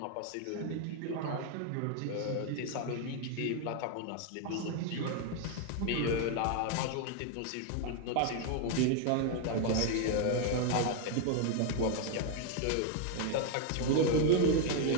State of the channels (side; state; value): both; different; correlation 0.00